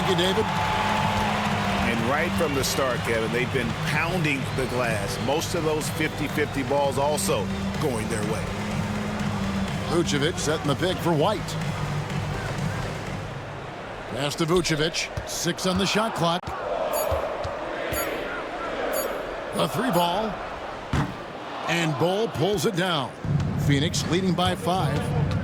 you, David. And right from the start, Kevin, they've been pounding the glass. Most of those 50-50 balls also going their way. Vucevic setting the pick for White. Pass to Vucevic. 6 on the shot clock. A 3 ball. And Bull pulls it down. Phoenix leading by 5.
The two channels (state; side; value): identical; both; correlation 1.00